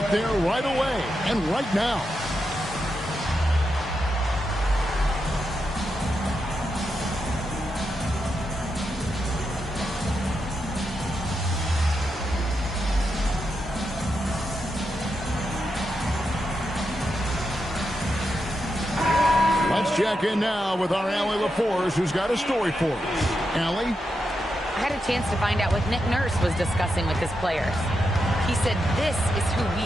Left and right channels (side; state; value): both; normal; correlation 0.86